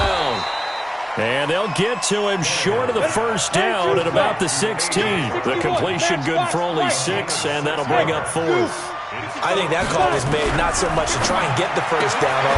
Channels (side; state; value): both; identical; correlation 1.00